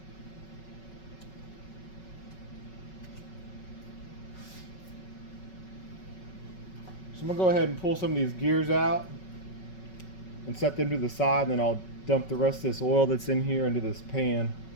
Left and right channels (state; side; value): late; right; 5.4 ms